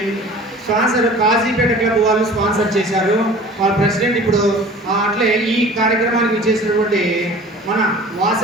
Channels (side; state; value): both; normal; correlation 0.44